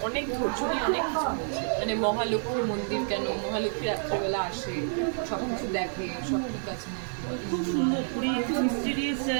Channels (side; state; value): left; silent; digital silence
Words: অনেক ধৈর্য নিয়ে অনেক কিছু বলছে। মানে মহালক্ষ্মী মন্দির কেন, মহালক্ষ্মী রাত্রেবেলা আসে, সব কিছু দেখে, সব ঠিক আছে না। খুব সুন্দর পুরী, একটু মিস্টিরিয়াস